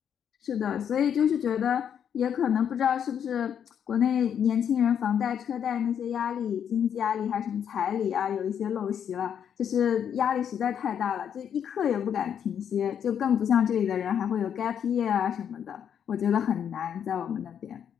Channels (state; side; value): quieter; right; 8.5 dB